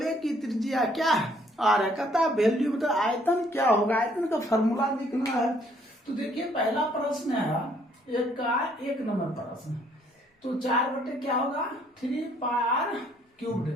की त्रिज्या क्या है? आर है। कहता है वैल्यू मतलब आयतन क्या होगा, आयतन का फॉर्मूला लिखना है। तो देखिए पहला प्रश्न है एक नंबर प्रश्न। तो 4 बटे क्या होगा? 3πr²।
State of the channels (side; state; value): both; normal; correlation 0.64